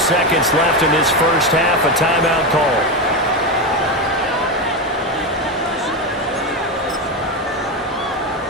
left in this first half, a timeout call.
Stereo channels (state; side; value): normal; both; correlation 0.13